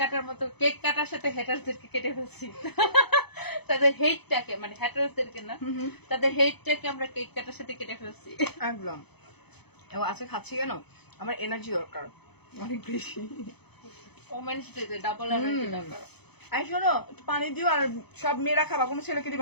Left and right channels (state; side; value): late; right; 0.98 ms